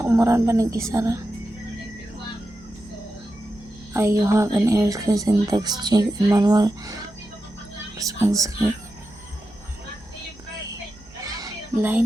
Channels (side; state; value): right; noise; hum, 26 dB below the sound